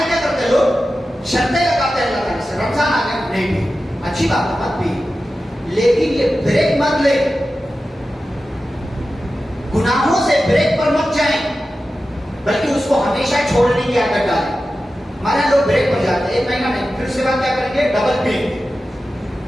کیا کرتے ہیں لوگ, شرطیں لگاتے ہیں اللہ تعالیٰ سے, رمضان آ گیا نہیں پی. اچھی بات ہے مت پی, لیکن یہ بریک مت لے. گناہوں سے بریک پر مت جائیں بلکہ اس کو ہمیشہ چھوڑنے کی عادت ڈالیں. ہمارے لوگ بریک پر جاتے ہیں 1 مہینہ نہیں, پھر اس کے بعد کیا کریں گے, ڈبل پئیں گے.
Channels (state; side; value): normal; both; correlation 0.93